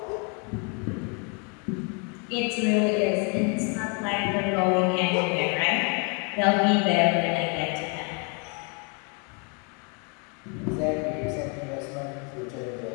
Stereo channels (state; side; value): quieter; right; 34.1 dB